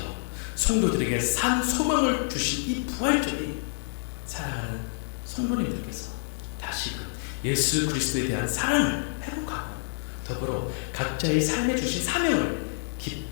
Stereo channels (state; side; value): silent; right; 60 dB below the other